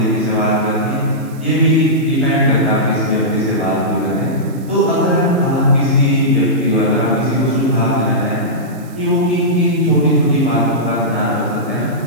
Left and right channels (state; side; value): noise; right; hiss, 25 dB below the sound